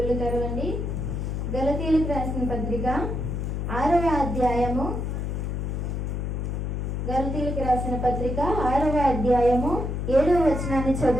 తెరవండి. గలతీయులకు రాసిన పత్రిక 6వ అధ్యాయము గలతీయులకు రాసిన పత్రిక 6వ అధ్యాయము 7వ వచనాన్ని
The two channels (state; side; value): noise; left; hum, 2 dB below the sound